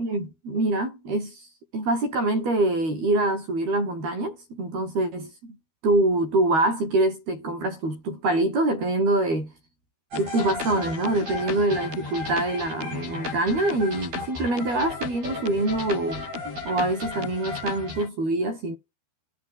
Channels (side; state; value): left; late; 13 ms